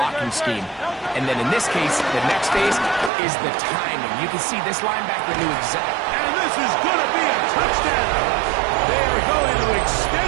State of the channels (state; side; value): drops out; left; at 3.1 s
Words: scheme? And then in this case, the next phase is the timing. You can see this linebacker knew exactly. And this is going to be a touchdown. They are going to